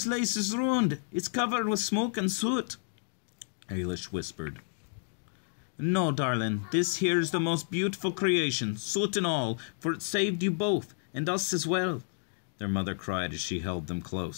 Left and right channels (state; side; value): silent; right; digital silence